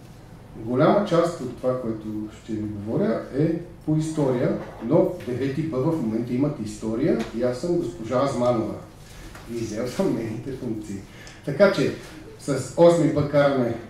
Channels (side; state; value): both; identical; correlation 1.00